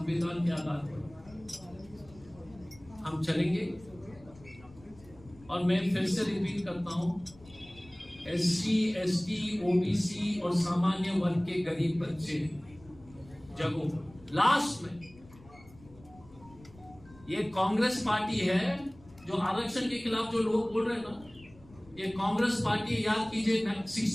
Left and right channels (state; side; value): noise; left; rumble, 23 dB below the sound